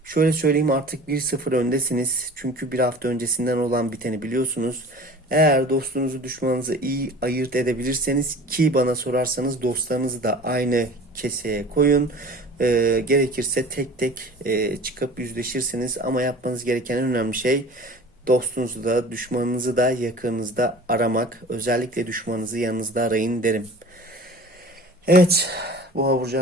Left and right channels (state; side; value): normal; both; correlation 0.42